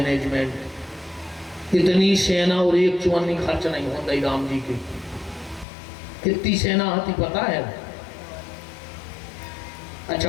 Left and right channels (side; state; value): right; drops out; at 5.7 s